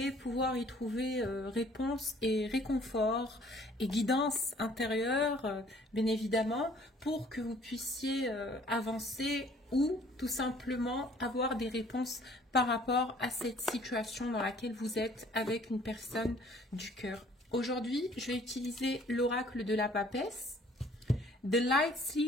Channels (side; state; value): both; normal; correlation 0.57